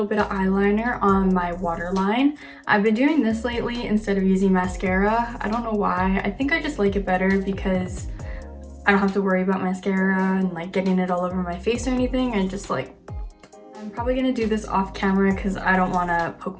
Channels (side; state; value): both; identical; correlation 1.00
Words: bit of eyeliner on my waterline. I've been doing this lately instead of using mascara. I don't know why. I think I just like it better because I don't have to worry about mascara and like getting it all over my face or anything. And just like, I'm probably gonna do this off camera because I don't want to poke